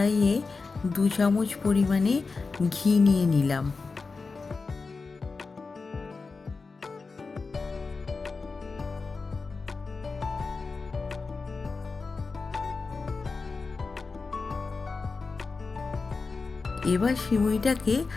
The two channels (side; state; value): right; quieter; 4.3 dB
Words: 2 চামচ পরিমাণে ঘি নিয়ে নিলাম। এবার সিমুইটাকে